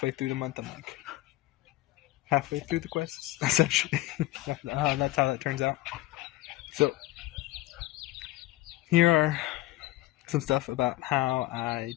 through the month, I'm like halfway through the quests, essentially. That's how that turns out. So here are some stuff about how I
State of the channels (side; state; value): right; quieter; 17.0 dB